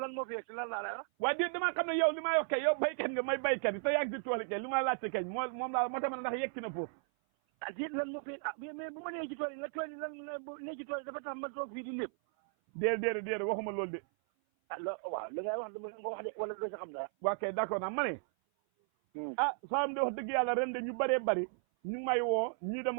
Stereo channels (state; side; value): silent; left; 54 dB below the other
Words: moo fi yegg lan laa lay wax. waaye déet damaa xam ne yow li may wax kay yow baykat nga may baykat yi te yàgg si tool yi kay li ma laajte kay moom laa moo tax ma ne ndax yegg na foofu. déet lan moo fi mais bu ma nee ci tool yi lan nee ci tool yi dafa tax ma toog fii di lépp. déedéet waxuma loolu de. waaw li ngay wax dama nga wax de wala doo sa xam dara. waa kay d'accord naa ma ne. Saalum de wax dëgg yàlla ren de ñu bëree bëri ñu may woo ñii